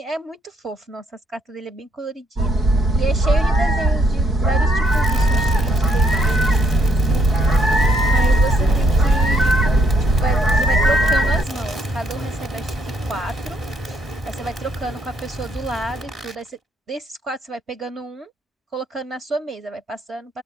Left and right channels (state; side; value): normal; both; correlation 0.71